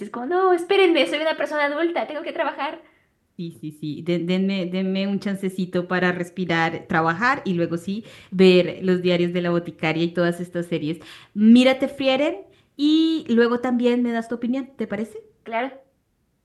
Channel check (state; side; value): identical; both; correlation 1.00